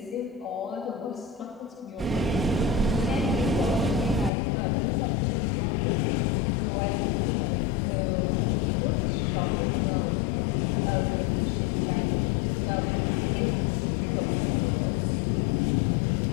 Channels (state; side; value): drops out; right; at 4.3 s